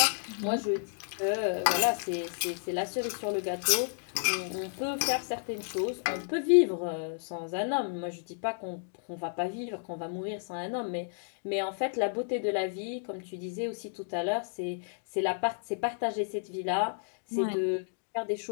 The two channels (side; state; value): right; silent; digital silence